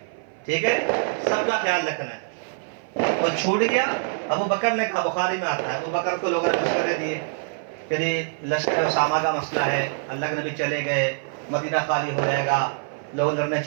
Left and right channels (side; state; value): left; silent; 56 dB below the other